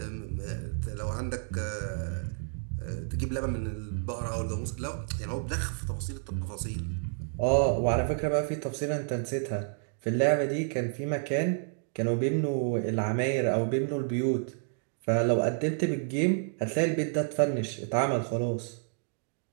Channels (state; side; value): silent; left; digital silence